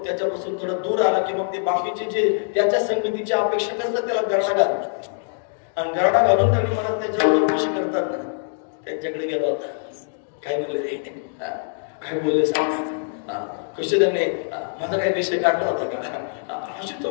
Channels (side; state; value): right; silent; digital silence